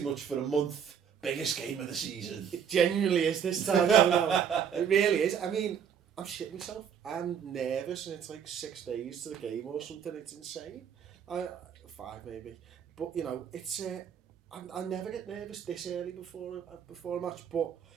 much for a month. Biggest game of the season. It genuinely is this time. No. It really is. I mean, I'm shitting myself. I'm nervous and it's like 6 days to the game or something. It's insane. 5 maybe. But, you know, it's... I never get nervous this early before a match. But,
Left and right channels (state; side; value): quieter; left; 7.8 dB